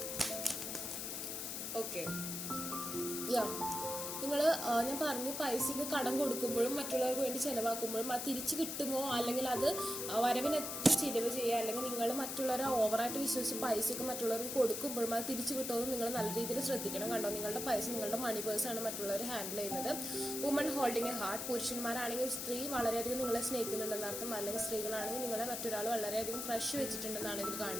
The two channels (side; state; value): left; noise; hiss, 4 dB below the sound